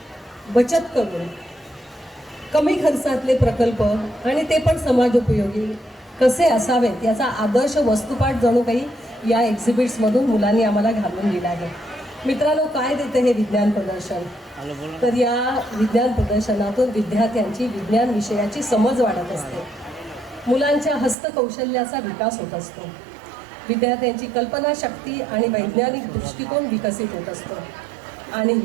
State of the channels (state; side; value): drops out; left; at 21.2 s